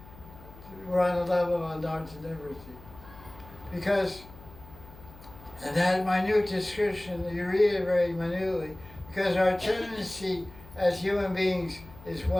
we're on the level of anartha liberty. Because, and that minute description, you read it very minutely, because our tendency as human beings is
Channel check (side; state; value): left; noise; hum, 19 dB below the sound